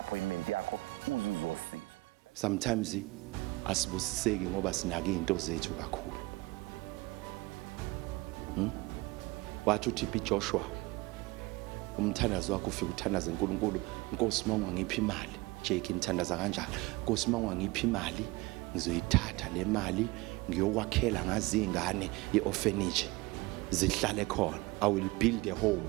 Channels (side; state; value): left; quieter; 22.4 dB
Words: yakho uzuzosizwa. Sometimes asibusiseki ngoba sinake izinto zethu kakhulu. Wathi uThiphi Joshua umthandazo wakho ufika uthandaza uNkulunkulu, Nkosi mawunga ngiphi imali, Jake ngithandaza kanjalo, Nkosi mawunga ngiphi imali ngizoyithatha le mali ngiyokwakhela ngazi ingane yeorphanage zihlale khona, I will build a home